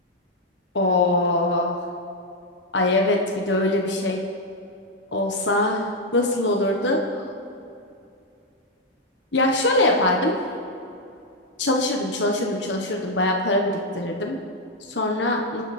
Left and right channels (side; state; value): both; normal; correlation 0.01